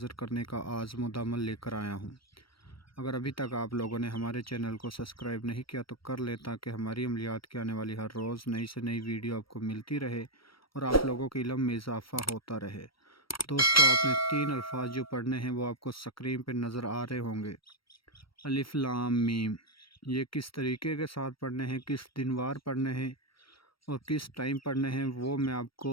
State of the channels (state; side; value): late; right; 0.75 ms